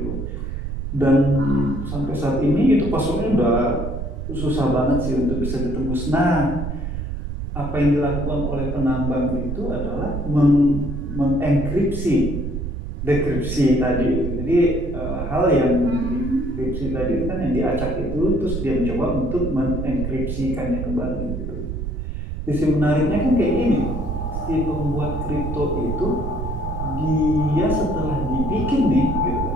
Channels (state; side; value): noise; right; rumble, 5 dB below the sound